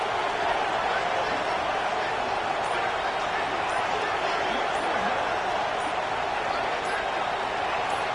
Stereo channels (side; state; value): both; identical; correlation 1.00